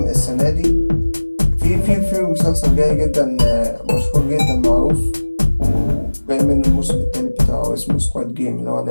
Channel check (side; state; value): both; inverted; correlation -1.00